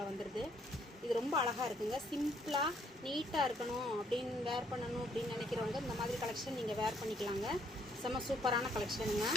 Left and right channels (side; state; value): both; normal; correlation 0.67